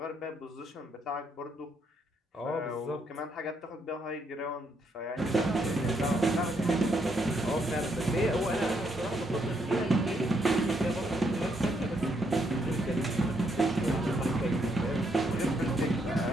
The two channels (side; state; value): both; normal; correlation 0.75